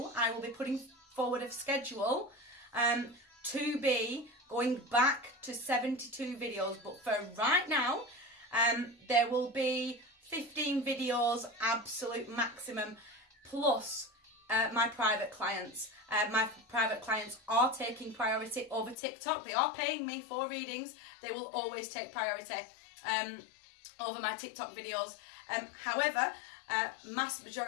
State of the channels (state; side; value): drops out; right; at 18.9 s